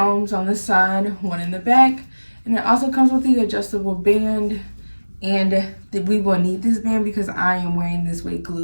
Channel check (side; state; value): both; inverted; correlation -1.00